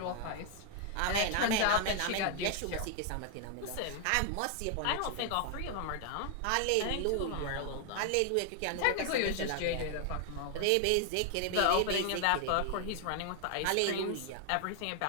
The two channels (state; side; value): different; both; correlation 0.00